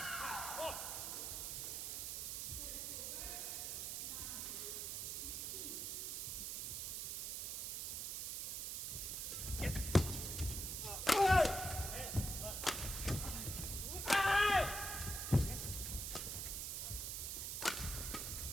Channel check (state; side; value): noise; right; hiss, 3 dB below the sound